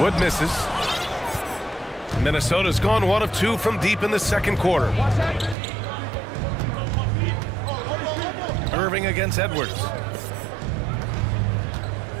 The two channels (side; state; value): left; drops out; at 5.6 s